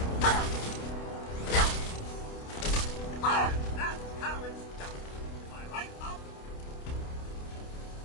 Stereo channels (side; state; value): right; late; 28 ms